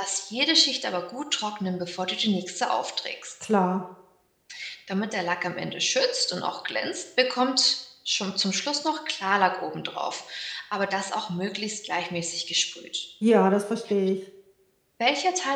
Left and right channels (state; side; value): identical; both; correlation 1.00